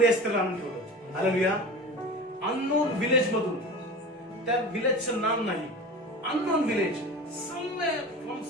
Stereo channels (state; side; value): normal; both; correlation 0.33